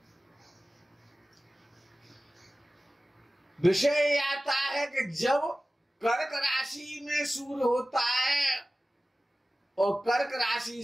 विषय आता है कि जब कर्क राशि में सूर्य होता है और कर्क राशि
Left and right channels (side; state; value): both; normal; correlation 0.96